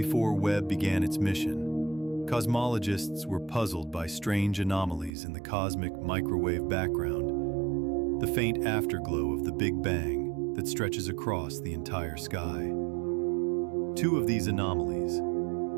Webb began its mission, cosmologists were puzzled by strange anomalies in the cosmic microwave background, the faint afterglow of the Big Bang that stretches across the entire sky. Two of these anomalies,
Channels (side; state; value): left; drops out; at 5.1 s